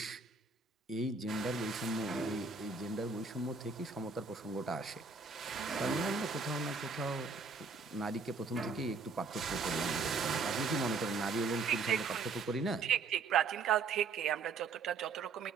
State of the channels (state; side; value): quieter; left; 4.5 dB